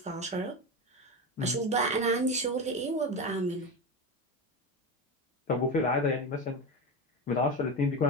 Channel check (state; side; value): normal; both; correlation 0.19